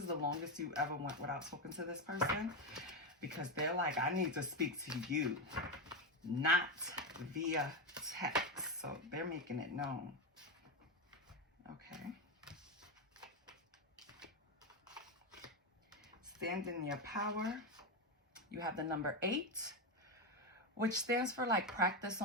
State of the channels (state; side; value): normal; both; correlation 0.11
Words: the longest you ever went without talking to this person, because they're like, I need to speak to you, not via text. So they're making it known. Okay. Stand in your power. You have the number 8, which stands for like practice